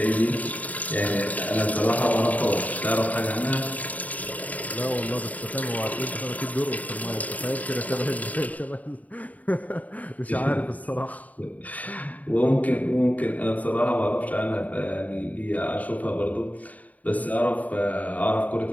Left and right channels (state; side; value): late; right; 0.073 ms